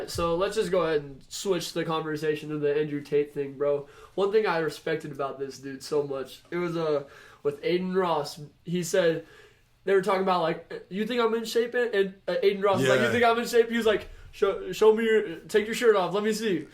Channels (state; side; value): identical; both; correlation 1.00